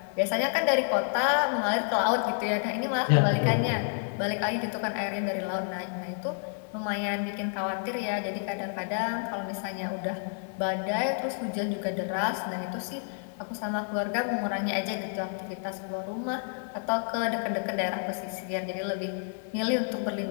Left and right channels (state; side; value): silent; right; 58 dB below the other